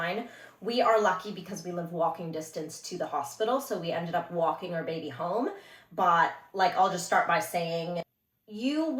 We are lucky because we live walking distance to the hospital, so we ended up walking our baby home. But I'll just start by saying, you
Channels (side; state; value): both; identical; correlation 1.00